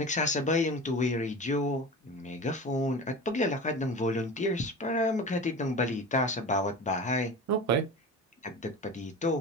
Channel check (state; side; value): normal; both; correlation 0.32